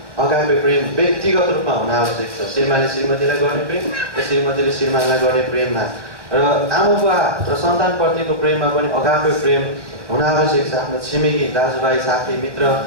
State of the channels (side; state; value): left; late; 1.1 ms